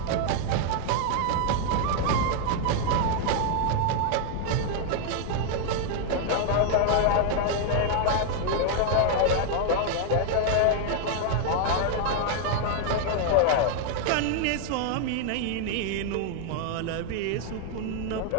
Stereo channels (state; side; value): different; both; correlation 0.00